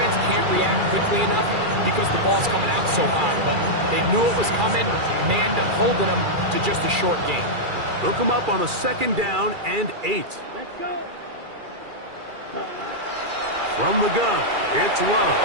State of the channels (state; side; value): late; left; 2.4 ms